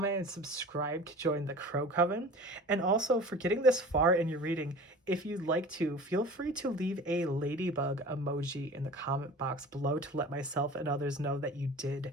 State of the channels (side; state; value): both; normal; correlation 0.40